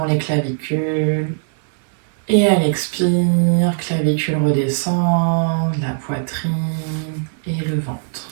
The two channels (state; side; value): silent; left; 57 dB below the other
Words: les clavicules. Et à l'expire, clavicule redescend, la poitrine et le ventre.